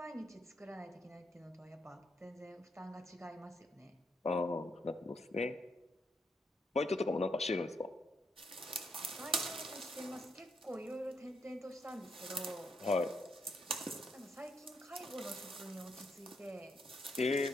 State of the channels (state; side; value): normal; both; correlation 0.77